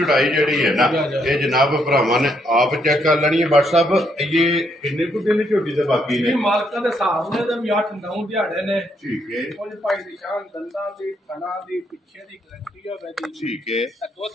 ਜਿਹੜੀ ਹੈ ਨਾ ਇਹ ਜਨਾਬ ਭਰਾਵਾਂ ਨੇ ਆਪ ਚੈੱਕ ਕਰ ਲੈਣੀ ਹੈ WhatsApp ਇਹ ਕਿੰਨੇ ਕੁ ਦਿਨ ਝੋਟੀ ਦੇ ਬਾਕੀ ਨੇ ਮਾਲਕਾਂ ਦੇ ਹਿਸਾਬ ਨੇ ਤੇ ਵੀ 8-9 ਦਿਹਾੜੇ ਨੇ ਠੀਕ ਹੈ ਕੁਝ ਭਾਈ ਦੀ ਸ਼ਾਨ ਦੰਦਾਂ ਦੀ ਥਣਾ ਦੀ ਪਿੱਛੇ ਦੀ ਗਰੰਟੀ ਹੋਵੇ ਦੀ ਠੀਕ ਹੈ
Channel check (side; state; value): both; normal; correlation 0.74